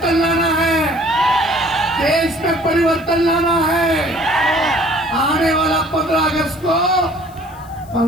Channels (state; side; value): noise; left; hiss, 26 dB below the sound